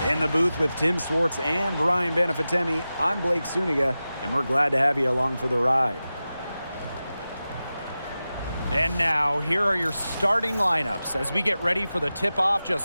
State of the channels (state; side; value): inverted; both; correlation -0.94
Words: In the booth with Tim Swartz and Brian Benefitemi, I'm Blake Suniga, and we're glad to have you along for the ride. And now, here are your starting lineups as we get ready for the tip-off